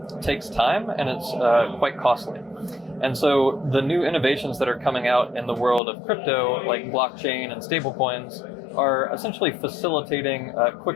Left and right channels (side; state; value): right; drops out; at 5.8 s